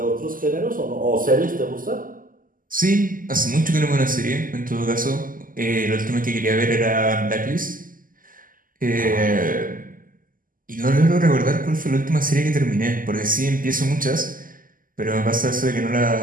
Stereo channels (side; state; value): left; late; 0.41 ms